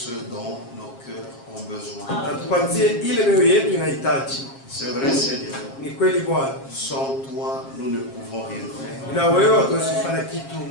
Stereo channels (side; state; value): right; late; 7.4 ms